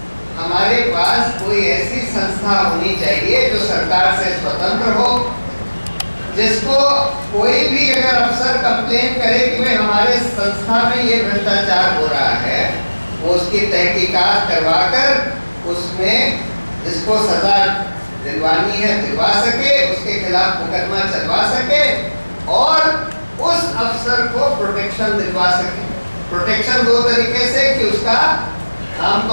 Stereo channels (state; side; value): inverted; both; correlation -1.00